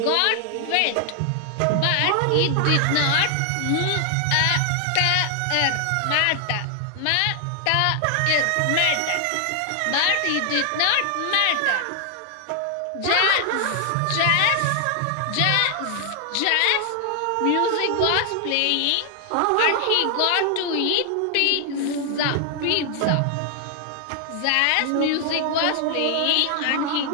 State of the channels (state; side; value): different; both; correlation 0.00